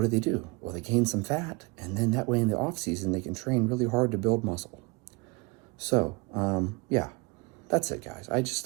do? Well, they gain some fat, and then that way in the off season they can train really hard to build muscle. So, yeah, that's it, guys.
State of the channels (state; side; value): quieter; left; 27.0 dB